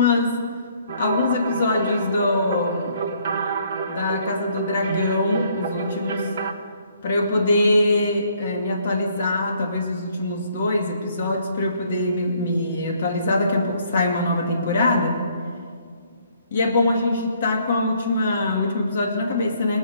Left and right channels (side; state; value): both; inverted; correlation -0.65